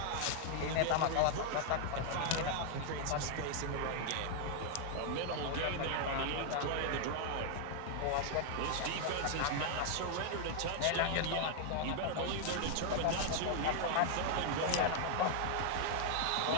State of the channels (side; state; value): both; different; correlation 0.00